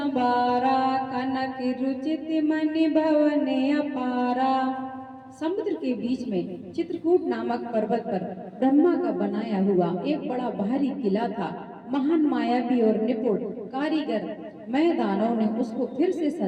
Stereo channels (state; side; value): identical; both; correlation 1.00